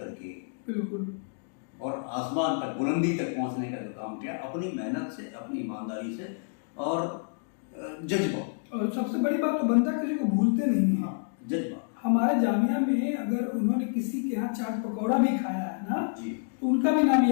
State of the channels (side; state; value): right; silent; digital silence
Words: बिल्कुल और आसमान तक, बुलंदी तक पहुंचने का जो काम किया, अपनी मेहनत से, अपनी ईमानदारी से और जज्बा, और सबसे बड़ी बात तो बनता किसी को भूलते नहीं है। जज्बा हमारे जामिया में अगर उन्होंने किसी के यहाँ चाट पकौड़ा भी खाया है ना, जी तो उनका भी नाम